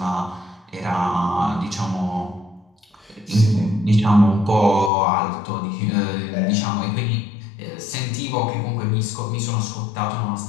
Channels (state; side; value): drops out; right; at 4.9 s